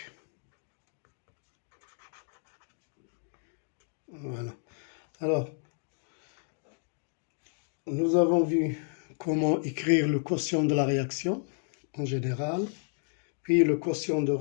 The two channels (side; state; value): right; silent; 57 dB below the other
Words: Voilà. Alors, nous avons vu comment écrire le quotient de la réaction en général, puis le quotient de